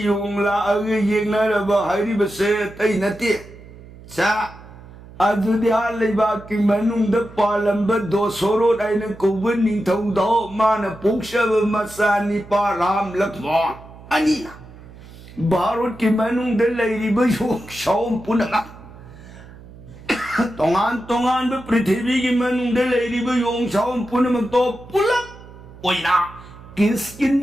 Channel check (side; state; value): right; noise; hum, 19 dB below the sound